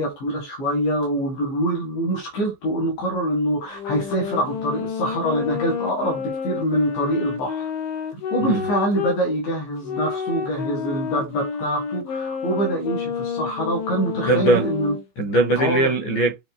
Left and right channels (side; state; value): right; late; 15 ms